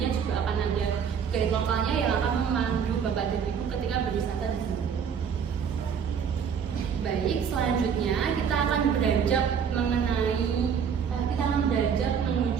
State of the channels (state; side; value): quieter; left; 7.2 dB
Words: juga akan ada guide lokalnya yang akan memandu Bapak dan Ibu ketika berwisata di sini. Baik, selanjutnya kita akan beranjak menuju